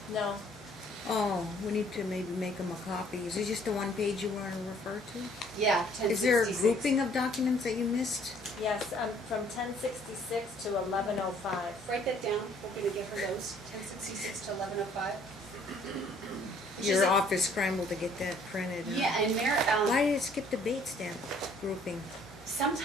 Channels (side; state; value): both; normal; correlation 0.60